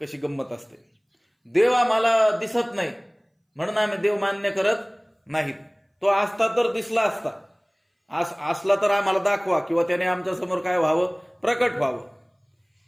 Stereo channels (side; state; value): both; identical; correlation 1.00